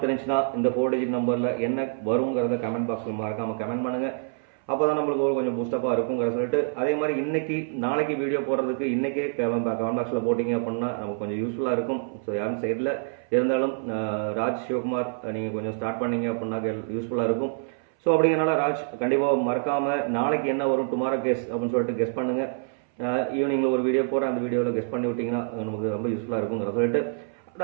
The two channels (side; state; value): left; silent; 61 dB below the other